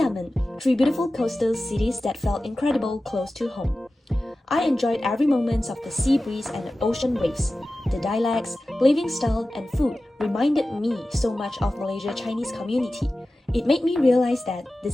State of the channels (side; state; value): both; normal; correlation 0.95